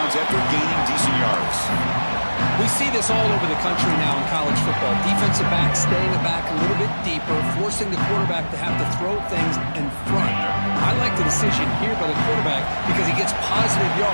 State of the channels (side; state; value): both; inverted; correlation -1.00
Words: after gaining decent yards. We see this all over the country now in college football. Defensive backs staying back a little bit deeper, forcing the quarterback to have to throw things in front. I like the decision here by the quarterback because he gets positive